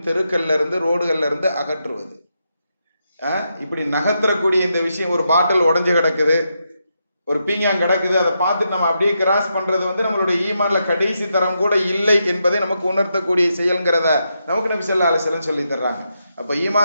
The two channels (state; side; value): inverted; both; correlation -0.83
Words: தெருக்கல்ல இருந்து ரோடுகள்ல இருந்து அகற்றுவது. இப்படி நகர்த்தக்கூடிய இந்த விஷயம், ஒரு பாட்டில் உடஞ்சு கிடக்குது, ஒரு பீங்காங் கிடக்குது, அதை பார்த்துட்டு நம்ம அப்படியே கிராஸ் பண்றது வந்து நம்மளுடைய ஈமான்ல கடைசி தரம் கூட இல்லை என்பதை நமக்கு உணர்த்தக்கூடிய செயல்ங்கிறத நமக்கு நபி ஸல்லல்லாஹு அலைஹி வஸல்லம் சொல்லி தர்றாங்க. அப்ப